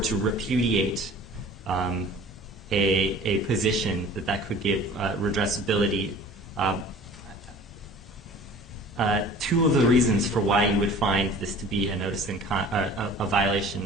repudiate a position that could give redressability. Two of the reasons for why you would find this to be a notice and a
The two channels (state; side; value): normal; both; correlation 0.45